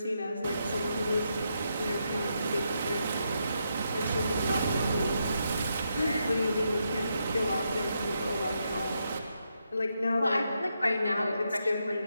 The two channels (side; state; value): both; inverted; correlation -0.82